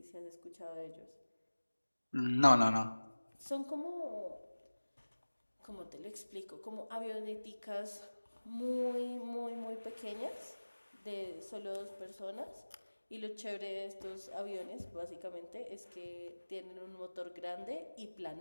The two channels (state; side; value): inverted; both; correlation -1.00